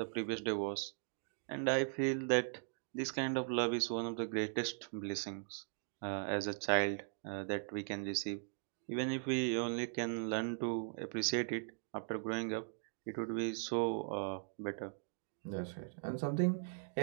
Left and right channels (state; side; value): silent; left; digital silence